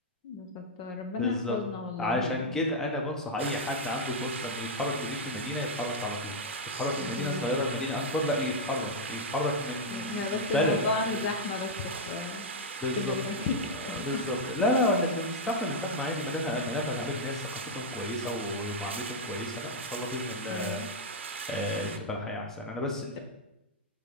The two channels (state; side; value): normal; both; correlation -0.02